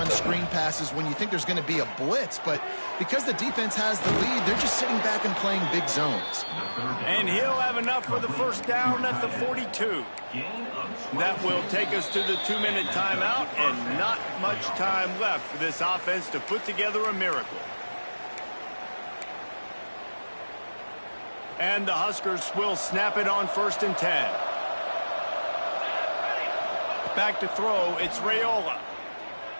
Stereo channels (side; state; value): both; inverted; correlation -1.00